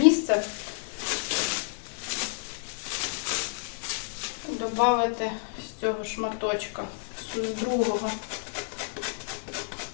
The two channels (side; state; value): right; silent; digital silence